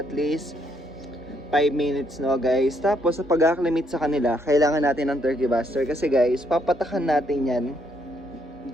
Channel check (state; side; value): normal; both; correlation 0.72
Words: at least 5 minutes guys. Tapos sa pag-acclimate sa kanila, kailangan natin ng turkey buster kasi guys, papatakan natin yan